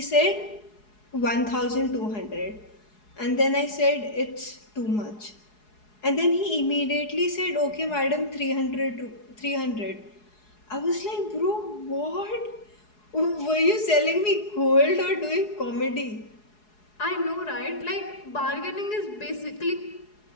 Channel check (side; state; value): right; late; 4.7 ms